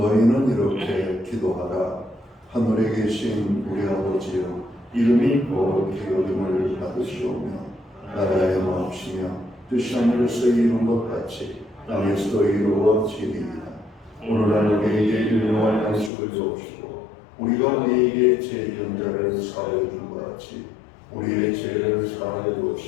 이렇게 기도하라. 하늘에 계신 우리 아버지여, 이름이 거룩히 여김을 받으시오며 나라의 마옵시며 뜻이 하늘에서 이룬 것 같이 땅에서도 이루어지리이다. 오늘날 우리에게 일용할 양식을 주옵시고 우리가 우리에게 죄지은 자를 사하여 준 것 같이 우리의 죄를 사하여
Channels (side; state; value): right; drops out; at 16.1 s